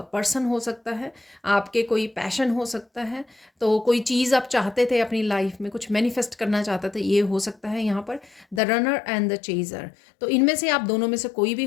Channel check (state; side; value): drops out; right; at 8.6 s